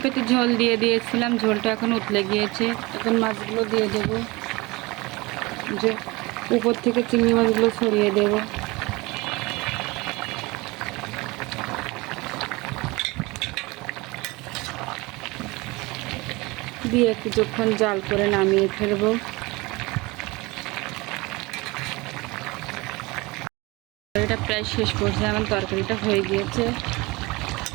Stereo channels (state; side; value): quieter; left; 23.6 dB